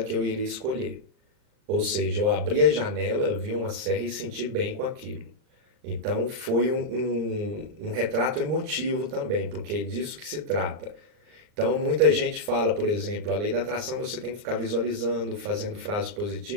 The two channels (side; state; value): left; late; 39 ms